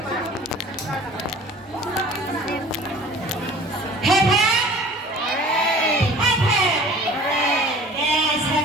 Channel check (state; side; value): normal; both; correlation 0.46